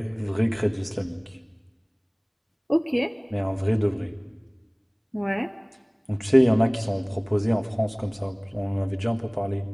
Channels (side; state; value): both; identical; correlation 1.00